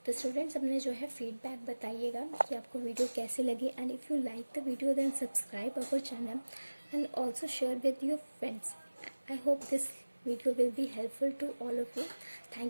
तो स्टूडेंट्स अपने जो है फीडबैक बताइएगा कि आपको वीडियो कैसी लगी, and if you like the video then subscribe our channel and also share with your friends. I hope this video will be helpful to all of you.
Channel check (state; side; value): inverted; both; correlation -1.00